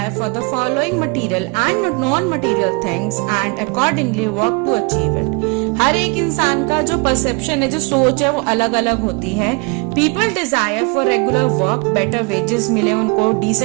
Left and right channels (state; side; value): quieter; left; 31.4 dB